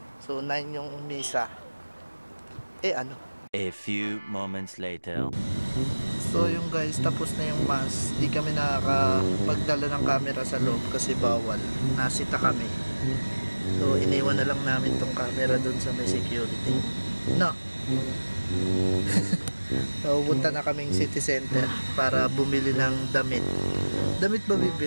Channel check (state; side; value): inverted; both; correlation -1.00